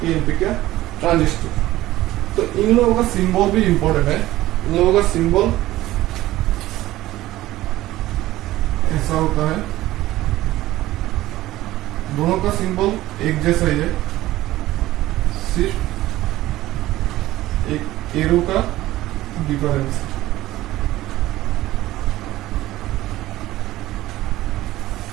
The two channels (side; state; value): left; quieter; 16.0 dB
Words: का ट्रांजिस्टर। तो इन लोगों का सिंबल भी इंपॉर्टेंट है। इन लोगों का सिंबल ऐसा होता है, दोनों का सिंबल एक जैसा ही है, सिर्फ एक एरो का डिफरेंस।